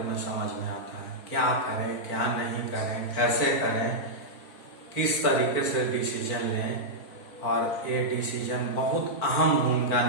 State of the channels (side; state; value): right; late; 4.5 ms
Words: में समझ में आता है। क्या करें, क्या नहीं करें, कैसे करें, किस तरीके से डिसीजन लें। और ये डिसीजन बहुत अहम भूमिका